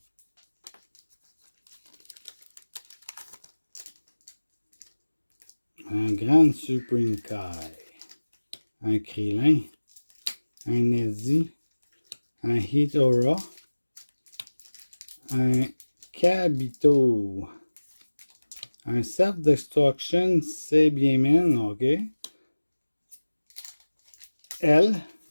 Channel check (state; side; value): inverted; both; correlation -1.00